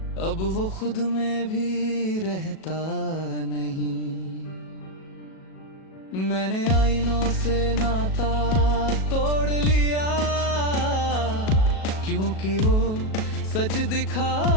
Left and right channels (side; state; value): right; late; 37 ms